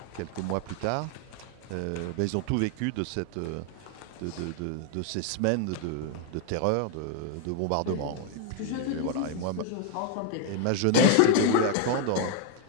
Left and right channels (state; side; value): different; both; correlation 0.01